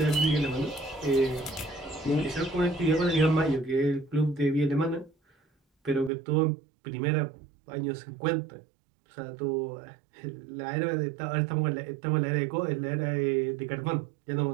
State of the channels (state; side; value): drops out; left; at 6.1 s